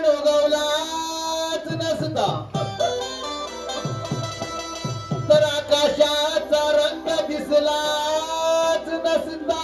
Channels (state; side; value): identical; both; correlation 1.00